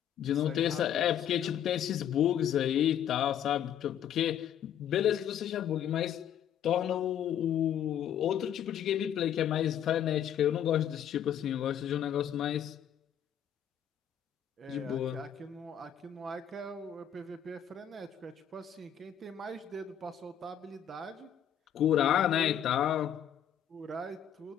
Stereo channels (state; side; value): quieter; right; 9.5 dB